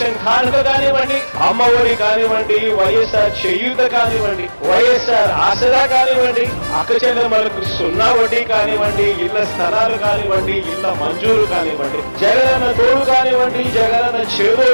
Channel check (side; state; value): both; inverted; correlation -1.00